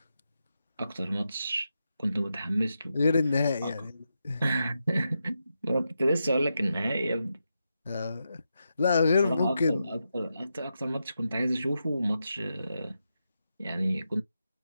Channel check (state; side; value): inverted; both; correlation -0.87